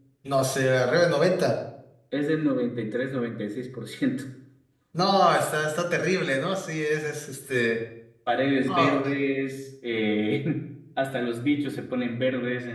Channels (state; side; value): identical; both; correlation 1.00